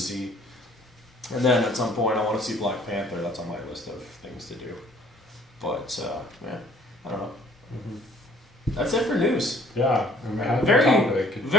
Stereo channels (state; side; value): normal; both; correlation 0.57